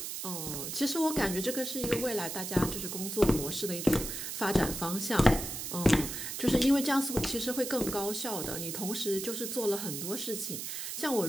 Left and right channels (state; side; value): noise; right; hiss, 5 dB below the sound